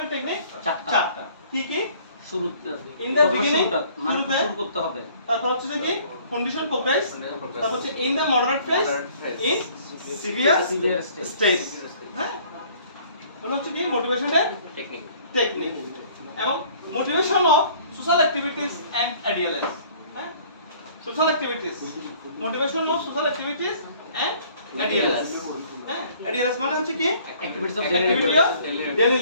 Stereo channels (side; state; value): both; inverted; correlation -0.56